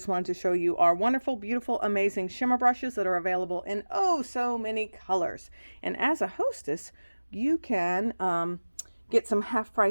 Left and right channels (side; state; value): both; inverted; correlation -1.00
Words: wanted to show you our wonderful, beautiful, amazing shimmer brushes that are available in oh so many colors. And as a hostess, you can get some